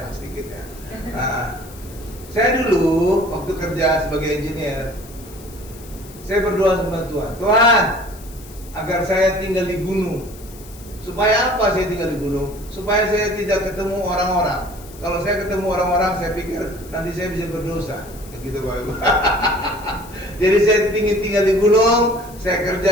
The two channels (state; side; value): noise; left; hiss, 20 dB below the sound